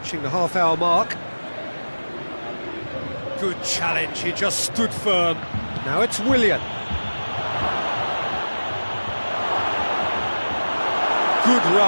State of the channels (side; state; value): both; inverted; correlation -1.00